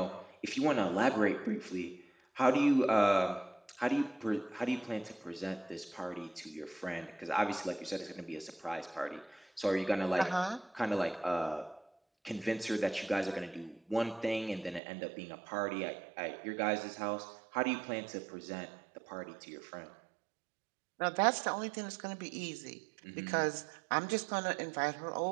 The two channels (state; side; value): drops out; left; at 14.8 s